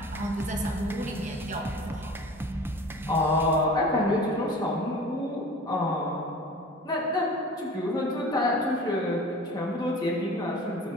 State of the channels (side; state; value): both; normal; correlation 0.41